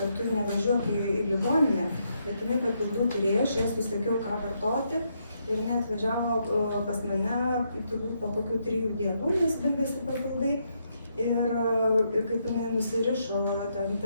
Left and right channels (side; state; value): both; inverted; correlation -0.78